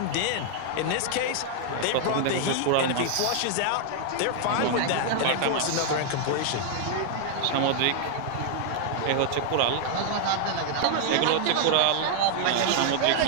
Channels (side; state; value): both; different; correlation 0.00